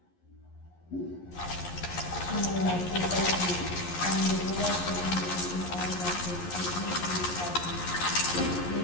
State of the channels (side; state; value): right; late; 11 ms